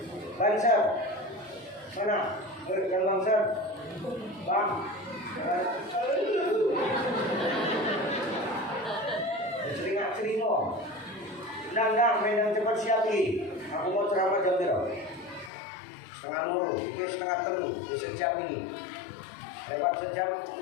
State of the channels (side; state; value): right; drops out; at 15.5 s